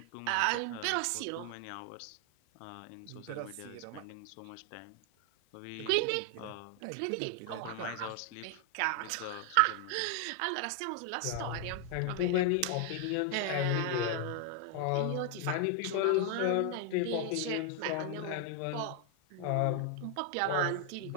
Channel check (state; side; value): different; both; correlation 0.00